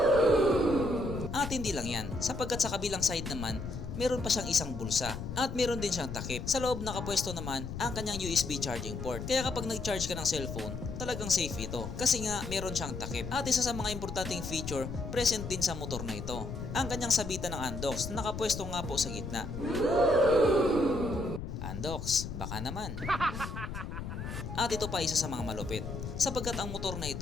At hindi lang yan, sapagkat sa kabilang side naman, meron pa siyang isang bulsa at meron din siyang takip. Sa loob nakapwesto naman ang kanyang USB charging port. Kaya kapag nag-charge ka ng cellphone, talagang safe ito kasi nga meron siyang takip. At isa sa mga importanteng feature present din sa motor na ito, ang kanyang sabitan ng Andox na nakapwesto nga po sa gitna. Andox, baka naman. At ito pa isa sa mga malupit, sapagkat ang motor na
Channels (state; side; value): noise; left; rumble, 7 dB below the sound